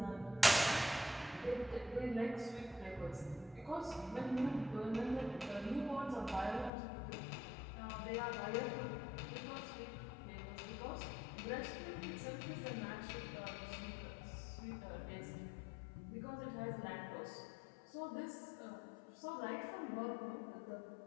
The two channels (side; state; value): right; drops out; at 6.7 s